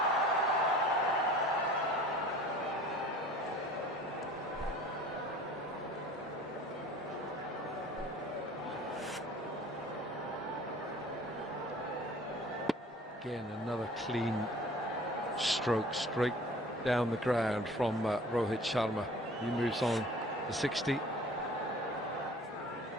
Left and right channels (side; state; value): both; normal; correlation 0.47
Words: Again, another clean stroke straight down the ground from Rohit Sharma. He moves on to 60.